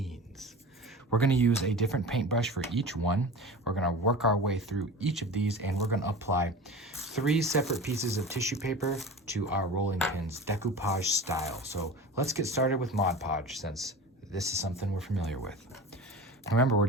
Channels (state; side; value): normal; both; correlation 0.34